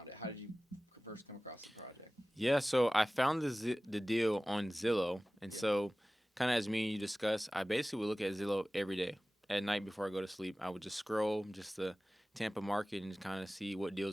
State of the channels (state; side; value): normal; both; correlation 0.97